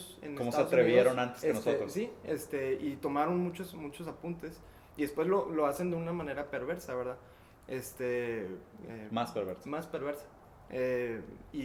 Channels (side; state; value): both; identical; correlation 1.00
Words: en cómo Estados se atrevieron Unidos, antes que nosotros. Sí, y tomaron muchos apuntes y después lo hacen de una manera perversa, ¿verdad? Más perversa. Más perversa.